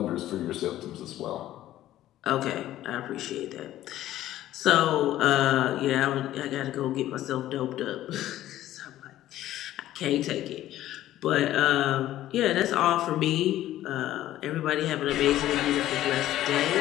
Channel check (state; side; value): quieter; right; 13.7 dB